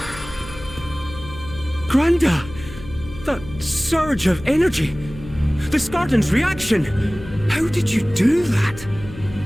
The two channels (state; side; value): noise; left; hum, 15 dB below the sound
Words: Granda! That surge of energy! The Skardan's reaction! How did you do that?